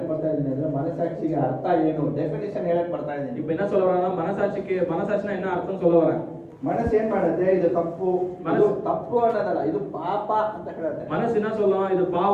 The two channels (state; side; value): identical; both; correlation 1.00